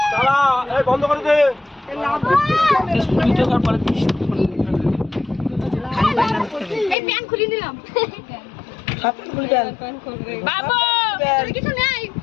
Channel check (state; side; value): drops out; right; at 7.0 s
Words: বন্ধ করে দে। এই প্যান খুলে দিলাম। বাবু কিছু নাই।